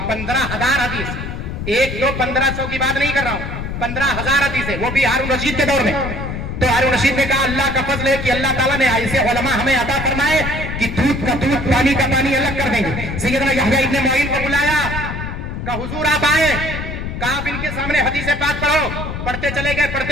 15,000 حدیث، 1 2 1500 کی بات نہیں کر رہا ہوں، 15,000 حدیثیں، وہ بھی ہارون رشید کے دور میں۔ تو ہارون رشید نے کہا اللہ کا فضل ہے کہ اللہ تعالیٰ نے ایسے علماء ہمیں عطا فرمائے کہ دودھ کا دودھ پانی کا پانی الگ کر دیں گے۔ سیدنا یحییٰ ابن معین کو بلایا، کہا حضور آپ آئے، کہا آپ ان کے سامنے حدیث پاک پڑھو۔ پڑھتے چلے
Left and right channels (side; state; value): left; noise; rumble, 6 dB below the sound